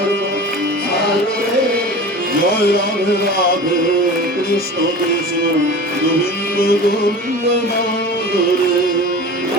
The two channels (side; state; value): both; normal; correlation 0.35